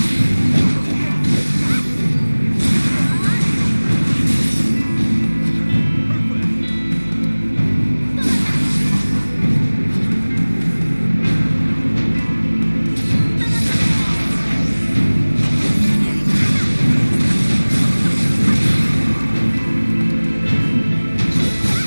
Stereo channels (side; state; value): both; inverted; correlation -1.00